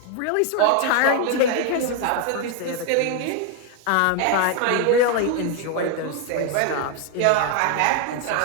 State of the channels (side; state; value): both; different; correlation 0.01